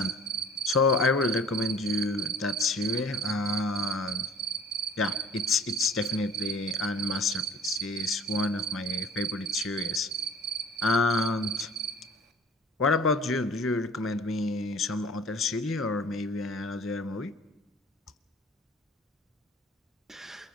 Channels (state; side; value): normal; both; correlation 0.50